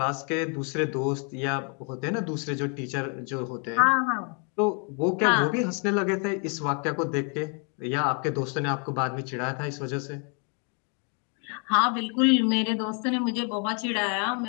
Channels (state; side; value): quieter; right; 38.3 dB